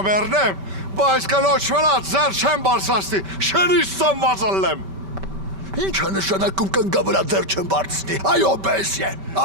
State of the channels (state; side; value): late; left; 5.2 ms